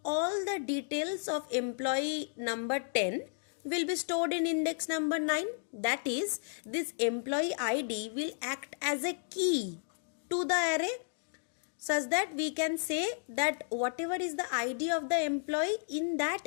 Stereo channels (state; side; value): silent; right; digital silence